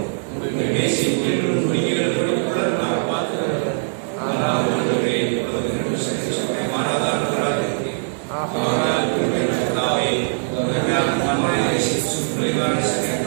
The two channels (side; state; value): left; silent; 57 dB below the other